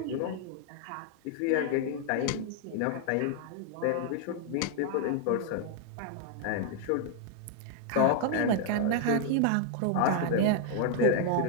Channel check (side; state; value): both; different; correlation 0.00